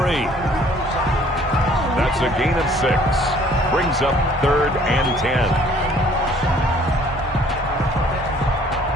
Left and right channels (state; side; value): normal; both; correlation 0.57